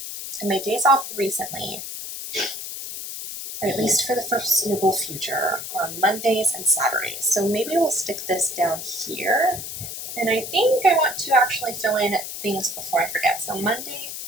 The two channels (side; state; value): left; noise; hiss, 8 dB below the sound